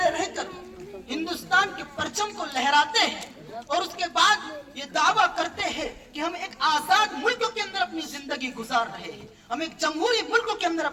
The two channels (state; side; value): identical; both; correlation 1.00